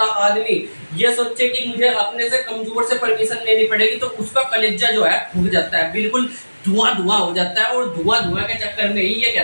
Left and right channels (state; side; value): inverted; both; correlation -1.00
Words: आदमी ये सोचे कि मुझे अपने से कमजोर से परमिशन लेनी पड़ेगी, तो उसका कलेजा जो है फूक जाता है, बिल्कुल धुआं हो जाता है। और धुआं के चक्कर में ही ये